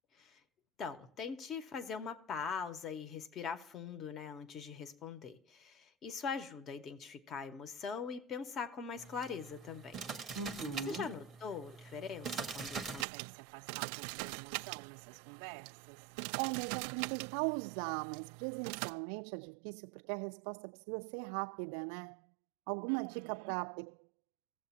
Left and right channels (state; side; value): drops out; left; at 13.1 s